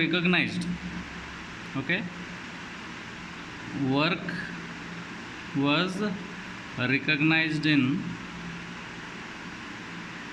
Okay, work was recognized in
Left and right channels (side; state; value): both; identical; correlation 1.00